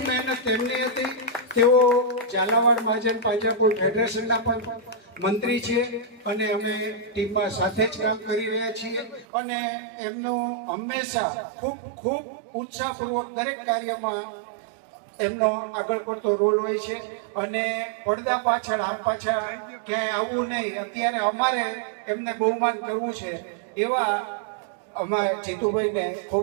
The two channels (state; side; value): drops out; left; at 9.2 s